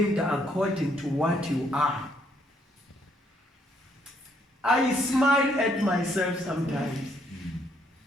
according to what you are. I smile at myself sometimes.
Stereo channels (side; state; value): both; normal; correlation 0.70